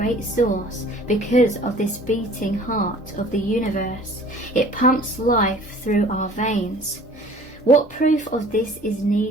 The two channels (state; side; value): normal; both; correlation 0.49